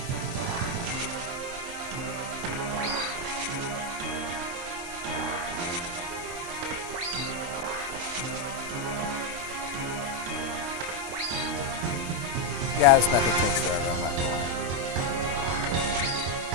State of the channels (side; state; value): left; late; 23 ms